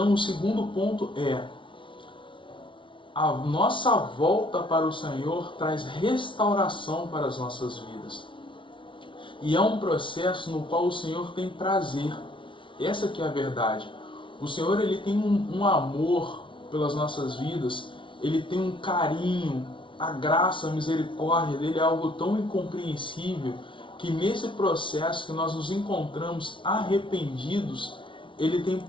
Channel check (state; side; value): late; right; 0.25 ms